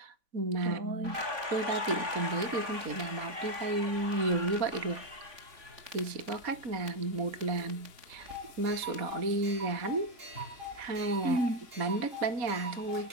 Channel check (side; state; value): left; late; 3.5 ms